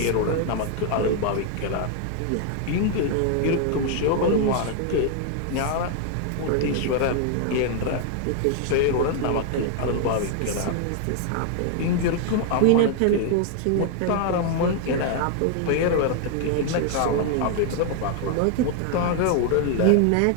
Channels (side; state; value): both; different; correlation 0.00